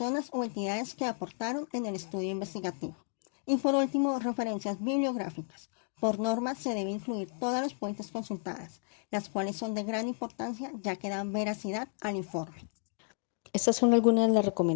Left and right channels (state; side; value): silent; right; 56 dB below the other